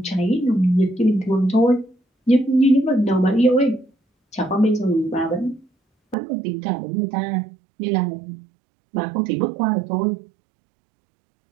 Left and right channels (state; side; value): drops out; left; at 6.2 s